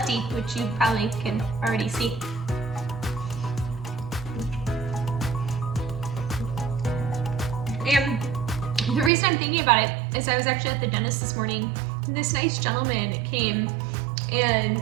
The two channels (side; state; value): left; drops out; at 9.1 s